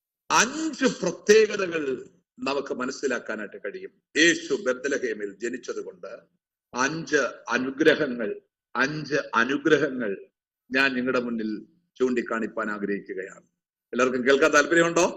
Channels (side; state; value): both; identical; correlation 1.00